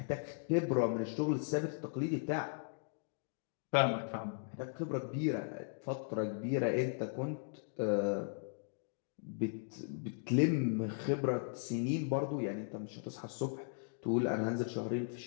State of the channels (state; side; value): silent; right; digital silence